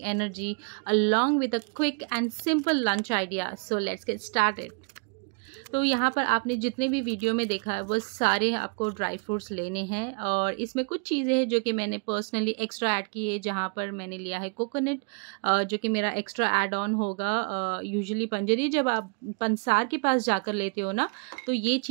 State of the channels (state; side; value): quieter; left; 36.7 dB